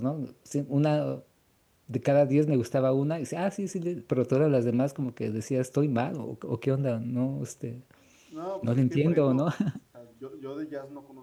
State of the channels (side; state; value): both; identical; correlation 1.00